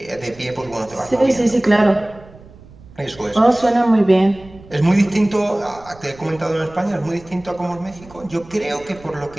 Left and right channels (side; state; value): right; noise; rumble, 22 dB below the sound